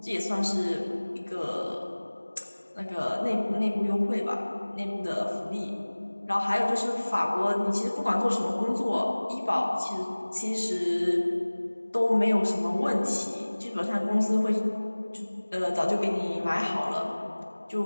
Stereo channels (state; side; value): inverted; both; correlation -1.00